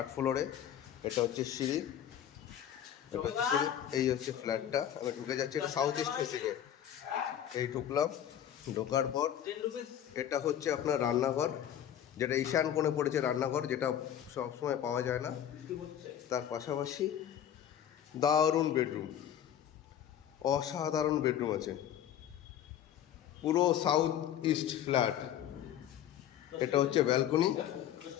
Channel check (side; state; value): right; quieter; 10.4 dB